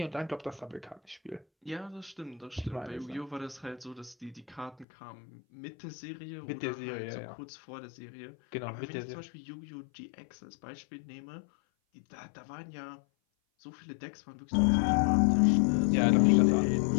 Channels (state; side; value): drops out; right; at 4.9 s